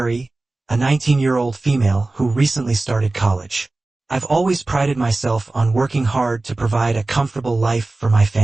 a 19-year-old female who recently started college. I've always prided myself on working hard to provide a comfortable life for my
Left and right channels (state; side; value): quieter; left; 3.1 dB